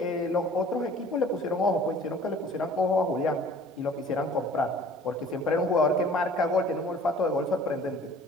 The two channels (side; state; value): both; normal; correlation 0.49